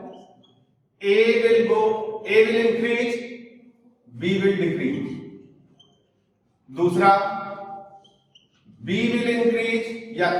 A will increase, B will decrease। दूसरा B will increase, या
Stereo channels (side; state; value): both; identical; correlation 1.00